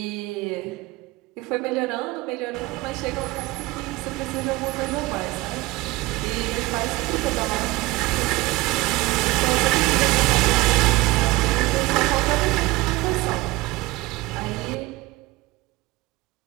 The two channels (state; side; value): quieter; left; 20.0 dB